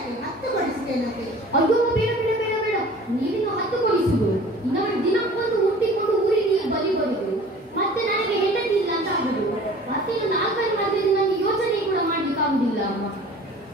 ಅಯ್ಯೋ ಬೇಡ, ನೀವಿನ್ನು 10 ಕೊಡಿಸುದು. ಇನ್ನೊಂದು ದಿನಕ್ಕೊಂದು ಹುಟ್ಟಿಕೊಂಡು ಊರಿಗೆ ನೀವು ಬಲಿ ಬರುದು, ಮತ್ತೆ ನನಗೆ ಹೆಂಡತಿ ಇಲ್ಲ ಅಂತ ಆಗುದು. ಮತ್ತೆ ಇನ್ನು 4 ಮದುವೆ ನನಗೆ ಯೋಚನೆ ಕೂಡ ಮಾಡ್ಲಿಕ್ಕೆ ಆಗುದಿಲ್ಲ ಅಮ್ಮ.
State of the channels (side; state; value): both; normal; correlation 0.46